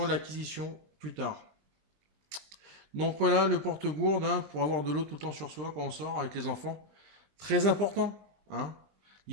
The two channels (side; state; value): left; late; 20 ms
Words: l'acquisition plus tard. Donc voilà, le porte-gourde, hein, pour avoir de l'eau tout le temps sur soi quand on sort avec les enfants. Très important, hein,